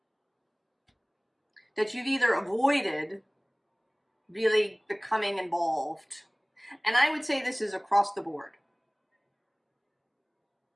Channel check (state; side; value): identical; both; correlation 1.00